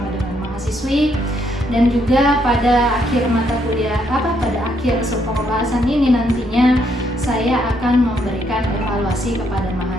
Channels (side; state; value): both; normal; correlation 0.73